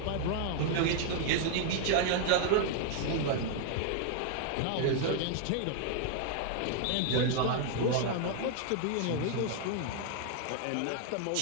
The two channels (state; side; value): different; both; correlation 0.00